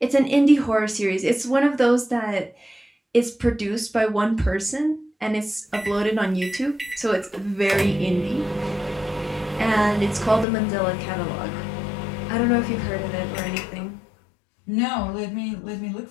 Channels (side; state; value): right; drops out; at 10.5 s